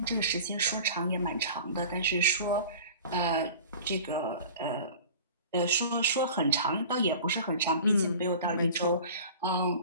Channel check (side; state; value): both; inverted; correlation -0.40